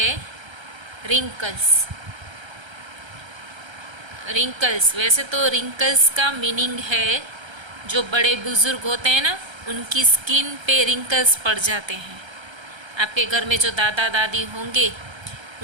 रिंकल्स। रिंकल्स, वैसे तो रिंकल्स का मीनिंग है जो बड़े बुजुर्ग होते हैं ना, उनकी स्किन पे रिंकल्स पड़ जाते हैं। आपके घर में जो दादा दादी होंगे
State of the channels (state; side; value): late; left; 1.3 ms